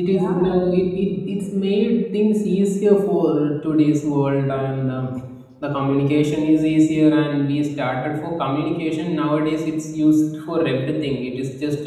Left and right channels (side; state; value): both; identical; correlation 1.00